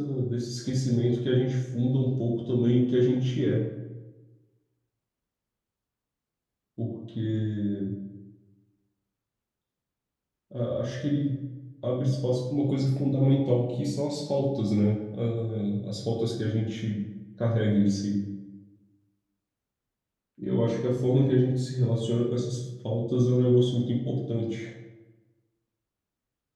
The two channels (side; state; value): both; identical; correlation 1.00